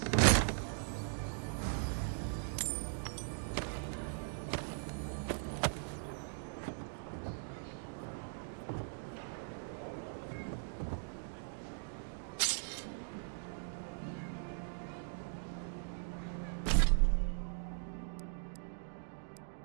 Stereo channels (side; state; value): left; silent; digital silence